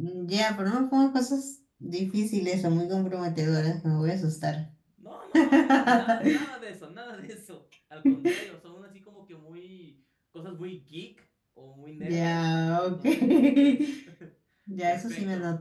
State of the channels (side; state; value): both; identical; correlation 1.00